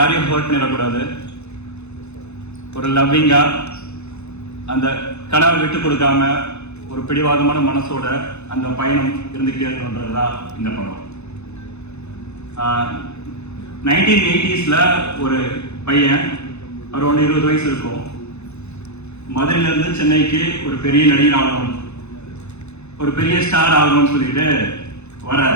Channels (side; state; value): right; late; 0.81 ms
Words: ஹர்ட் பண்ணிடக்கூடாது. ஒரு லவ்விங்கா அந்த கனவை விட்டு கொடுக்காம ஒரு பிடிவாதமான மனசோட அந்த பயணம் இருந்துகிட்டே இருக்கணுன்றதுதான் இந்த படம். 1980s ஒரு பையன் அரௌண்ட் 20 வயசு இருக்கும். மதுரையில இருந்து சென்னைக்கு ஒரு பெரிய நடிகர் ஆகணும், ஒரு பெரிய ஸ்டார் ஆகணும்னு சொல்லிட்டு